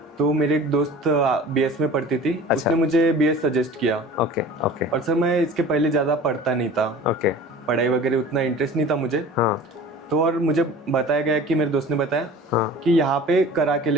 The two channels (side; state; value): both; normal; correlation 0.41